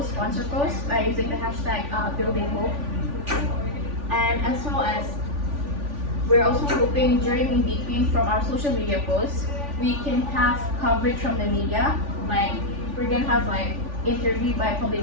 sponsor posts by using the hashtag building hope. And as well as, we're also hoping during in between from our social media posts, we can have coverage from the media. Like we're gonna have like interview by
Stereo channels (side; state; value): left; late; 3.5 ms